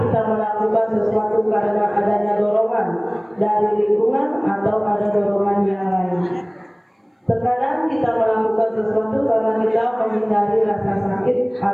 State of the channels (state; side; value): identical; both; correlation 1.00